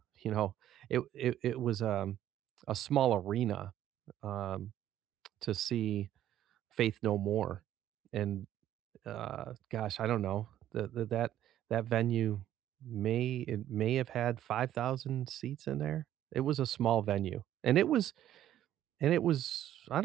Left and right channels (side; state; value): left; quieter; 12.0 dB